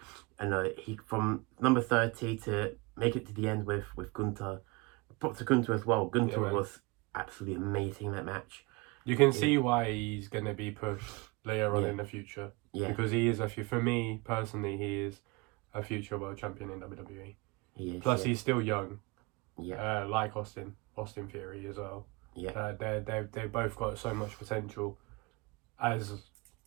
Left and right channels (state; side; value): quieter; left; 26.2 dB